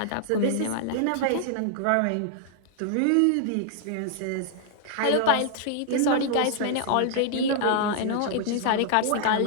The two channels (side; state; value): both; different; correlation -0.01